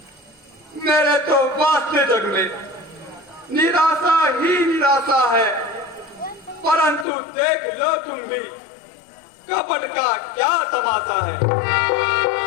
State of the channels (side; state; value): right; drops out; at 7.1 s